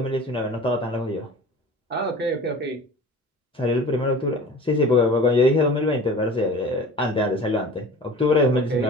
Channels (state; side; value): normal; both; correlation 0.40